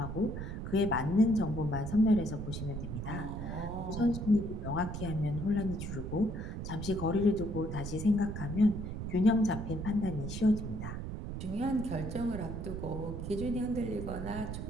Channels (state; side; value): noise; right; rumble, 6 dB below the sound